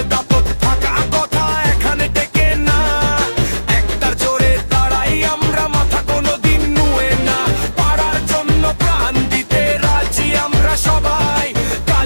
দাপট থাকা কথা এখানে টেকে না, একটার জোরে দাঁড়াই আমরা, মাথা কোনোদিন নুয়ে না। পাড়ার জন্য প্রাণ দিতে রাজি আমরা সবাই,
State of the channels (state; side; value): inverted; both; correlation -1.00